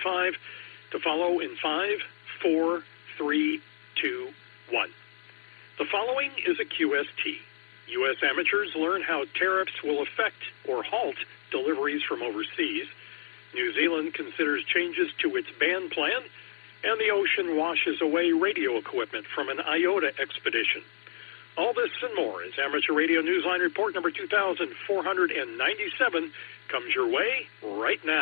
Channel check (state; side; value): silent; right; digital silence